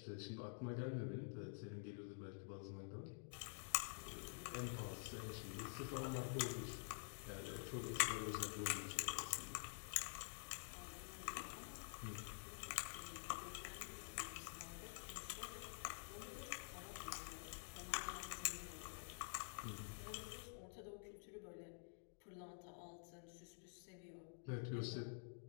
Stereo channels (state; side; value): silent; right; digital silence